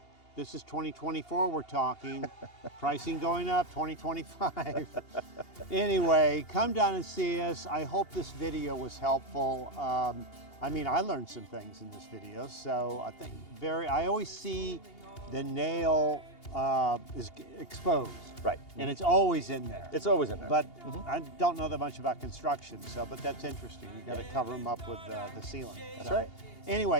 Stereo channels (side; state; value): right; late; 2.8 ms